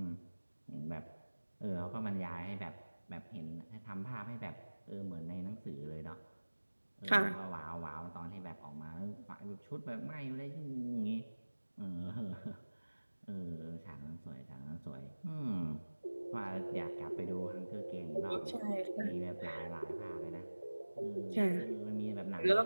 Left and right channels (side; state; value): both; inverted; correlation -1.00